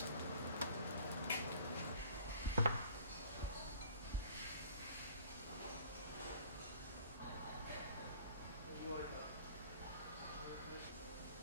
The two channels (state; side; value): inverted; both; correlation -0.52